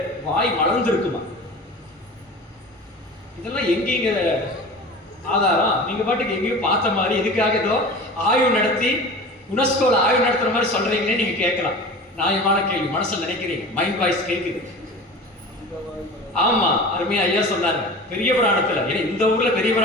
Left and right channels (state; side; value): normal; both; correlation 0.36